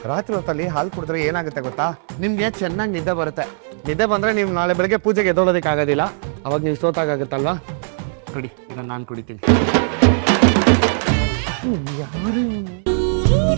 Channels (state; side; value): silent; left; 66 dB below the other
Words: ರಾತ್ರಿ ಹೊತ್ತಲ್ಲಿ ಹಾಲು ಕುಡಿದ್ರೆ ಏನಾಗುತ್ತೆ ಗೊತ್ತಾ? ನಿಮ್ಗೆ ಚೆನ್ನಾಗಿ ನಿದ್ದೆ ಬರುತ್ತೆ. ನಿದ್ದೆ ಬಂದ್ರೆ ನೀವು ನಾಳೆ ಬೆಳಗ್ಗೆ ಪೂಜೆಗೆ ಎದ್ದೋಳೋದಕ್ಕೆ ಆಗೋದಿಲ್ಲ. ಅವಾಗ ನೀವು ಸೋತಾಗುತ್ತಲ್ವಾ? ಕುಡಿ, ಇದನ್ನ ನಾನು ಕುಡಿತೀನಿ. ಯಾರು